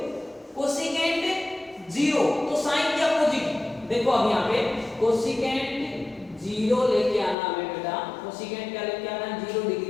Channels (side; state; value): right; drops out; at 7.4 s